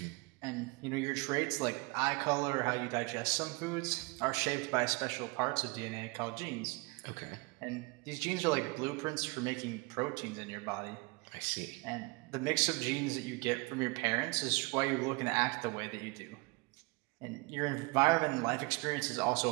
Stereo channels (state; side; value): quieter; left; 26.4 dB